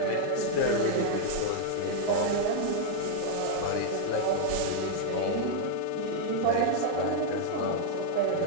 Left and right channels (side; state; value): both; different; correlation -0.01